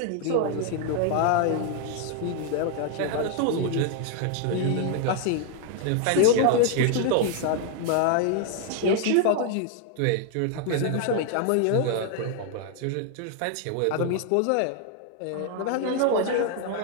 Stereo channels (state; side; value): different; both; correlation 0.00